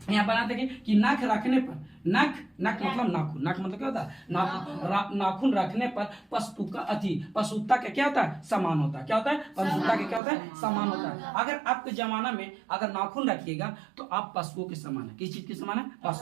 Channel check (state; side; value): drops out; left; at 10.2 s